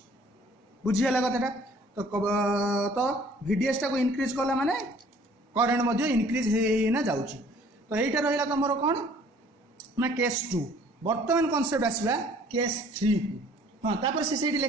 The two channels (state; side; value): normal; both; correlation 0.55